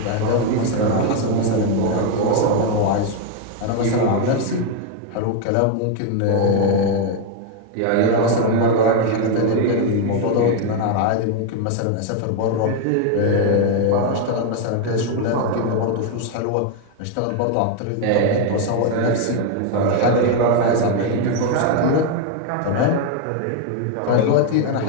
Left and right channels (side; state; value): both; different; correlation 0.01